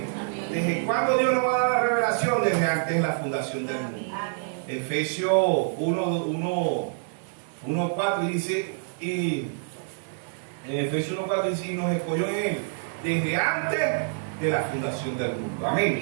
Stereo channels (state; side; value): silent; left; digital silence